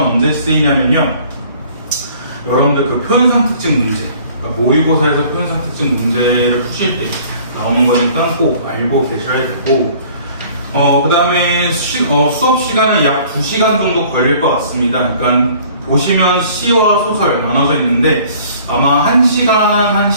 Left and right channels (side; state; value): both; inverted; correlation -0.53